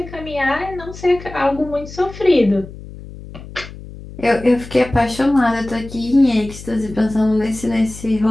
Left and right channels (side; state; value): left; noise; hum, 15 dB below the sound